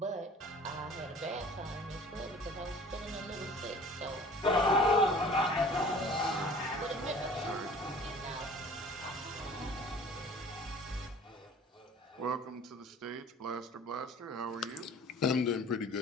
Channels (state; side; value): normal; both; correlation 0.47